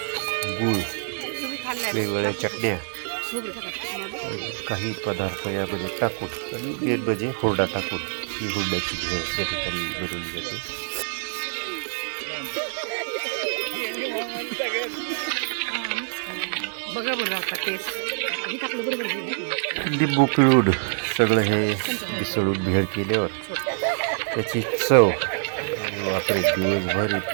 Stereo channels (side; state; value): left; silent; digital silence